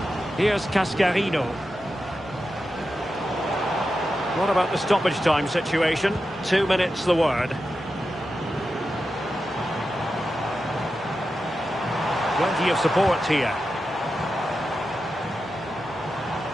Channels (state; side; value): normal; both; correlation 0.90